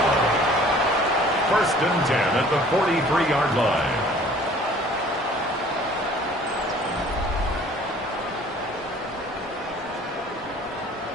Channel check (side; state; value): both; normal; correlation 0.52